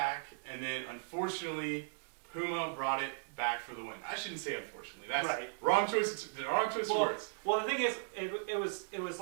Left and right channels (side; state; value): left; silent; digital silence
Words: and then unfortunately, Puma brought it back for the win. I shouldn't say unfortunately. That's right. Wrong choice of words. Well, the thing is, it was